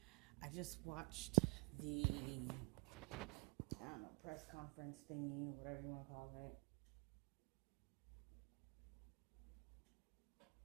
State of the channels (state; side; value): quieter; left; 33.7 dB